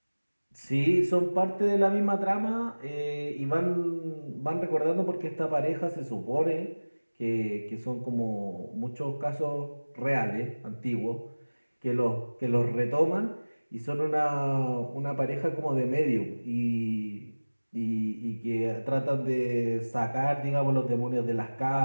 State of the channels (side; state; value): both; inverted; correlation -1.00